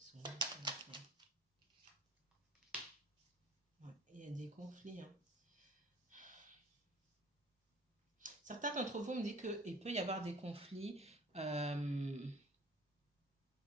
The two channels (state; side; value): normal; both; correlation 0.47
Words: s'il vous plaît. Ouais, il y a des conflits, hein. Certains d'entre vous me disent qu'il peut y avoir des conflits.